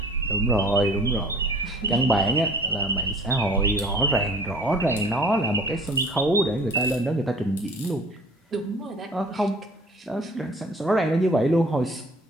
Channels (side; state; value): both; normal; correlation 0.49